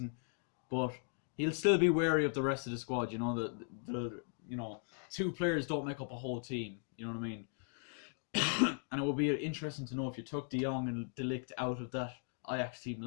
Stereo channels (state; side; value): silent; right; 53 dB below the other